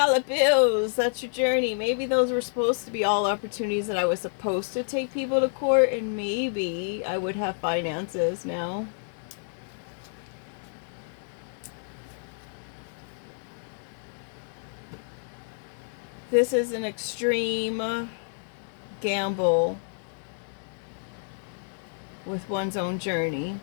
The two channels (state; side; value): silent; right; digital silence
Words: bills. That's your journey. Maybe those were supposed to be all opportunities that I was supposed to take people to court, and maybe I would have finances now. This is an extreme gamble with one's own journey.